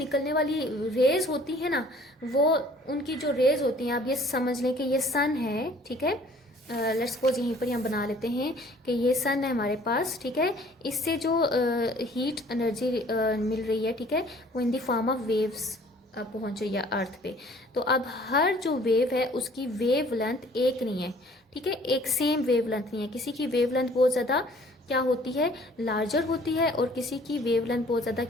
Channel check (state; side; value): normal; both; correlation 0.54